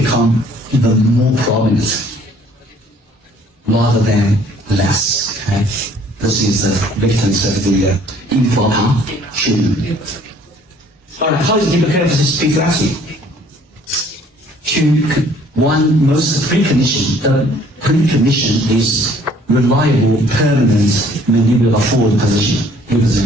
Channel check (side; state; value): both; normal; correlation 0.58